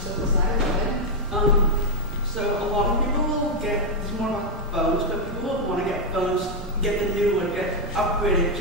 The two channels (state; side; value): normal; both; correlation 0.01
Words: go ahead. So a lot of people will it's more about phones, but people will want to get phones, get the new one, get upgraded,